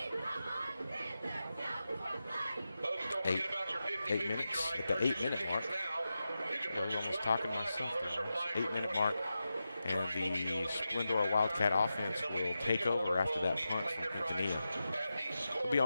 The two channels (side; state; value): both; inverted; correlation -0.91